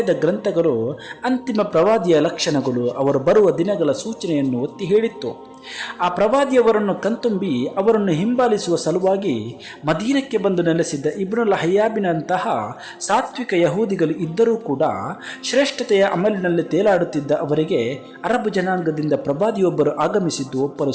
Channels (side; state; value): both; identical; correlation 1.00